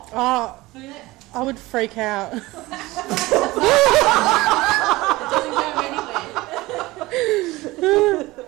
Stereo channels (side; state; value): left; quieter; 19.9 dB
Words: Oh, Look at that. I would freak out. It doesn't go anywhere.